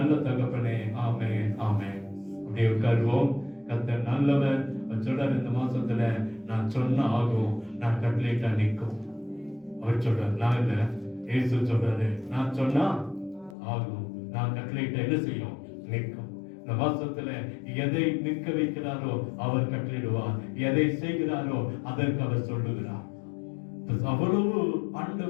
தகப்பனே, ஆமென், ஆமென். அப்படியே உட்காருவோம். கர்த்தர் நல்லவர். சொல்றார், இந்த மாசத்துல நான் சொன்ன ஆகும், நான் கட்டளையிட்டா நிற்கும். அவர் சொல்றார், நான் இல்ல, இயேசு சொல்றாரு, நான் சொன்னா ஆகும், நான் கட்டளையிட்டா என்ன செய்யும்? நிற்கும். இந்த மாசத்துல எதை நிற்க வைக்கிறாரோ அவர் கட்டளையிடுவார், எதை செய்கிறாரோ அதற்கு அவர் சொல்லுகிறார். அவ்வளவு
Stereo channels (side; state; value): right; drops out; at 13.6 s